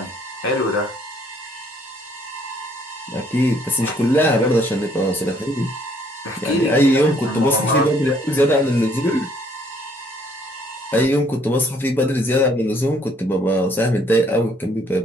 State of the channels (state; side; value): normal; both; correlation 0.64